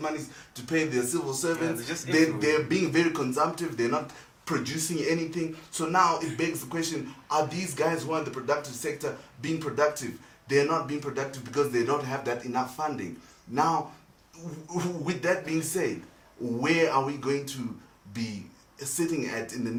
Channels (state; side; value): identical; both; correlation 1.00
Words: monies to pay their civil servants. They're being very consumptive. They're not producing anything. So now it begs the question, are these guys who are in the productive sector being productive? They're not being productive because they don't have that enough funding. Now, with that being said, where are we going to be sitting at in the